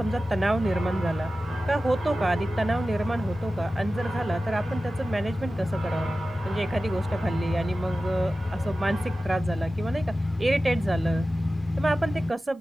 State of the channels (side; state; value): both; normal; correlation 0.95